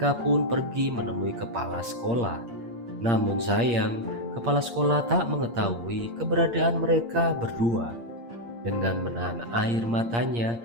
pun pergi menemui kepala sekolah. Namun sayang, kepala sekolah tak mengetahui keberadaan mereka berdua. Dengan menahan air matanya,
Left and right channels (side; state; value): left; late; 8.6 ms